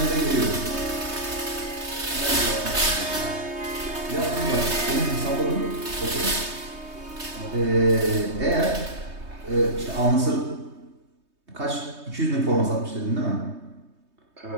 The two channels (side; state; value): left; late; 3.2 ms